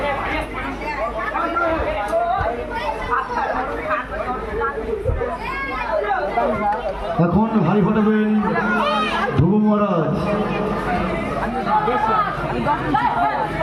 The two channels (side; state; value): both; identical; correlation 1.00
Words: এখন হাড়ি ফাটাবেন ধ্রুব মহারাজ।